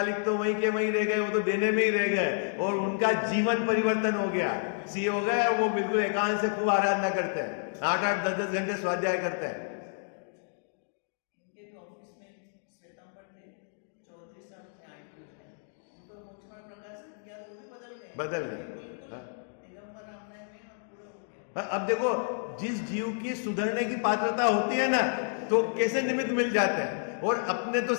तो वहीं के वहीं रह गए, वो तो देने में ही रह गए, और उनका जीवन परिवर्तन हो गया, सी हो गए। वो बिल्कुल एकांत से खूब आराधना करते हैं, 8-8, 10-10 घंटे स्वाध्याय करते हैं। बदल गए। अब देखो, जिस जीव की सुधरने की पात्रता होती है ना, तो कैसे निमित्त मिल जाते हैं। और अपने तो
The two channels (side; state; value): right; silent; digital silence